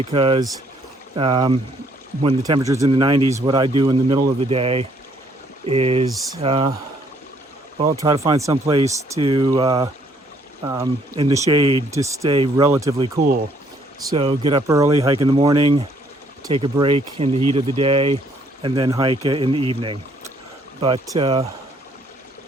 when the temperature's in the 90s, what I do in the middle of the day is, well, try to find some place to, in the shade to stay relatively cool. So get up early, hike in the morning, take a break in the heat of the day, and then hike in the evening. But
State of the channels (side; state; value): both; normal; correlation 0.66